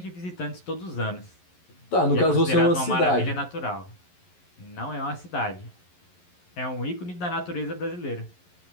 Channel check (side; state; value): right; late; 11 ms